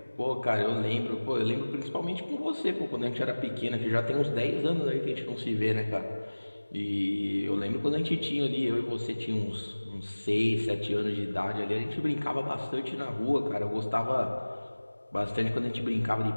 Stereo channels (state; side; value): inverted; both; correlation -1.00